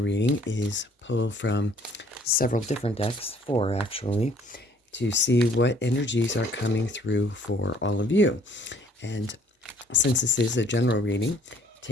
is pull from several different decks, 4 actually, to see what energies are coming through for all of you. And since this is a general reading,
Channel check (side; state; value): both; normal; correlation 0.59